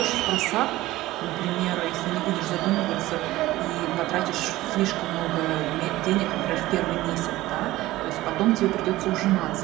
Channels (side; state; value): left; quieter; 17.1 dB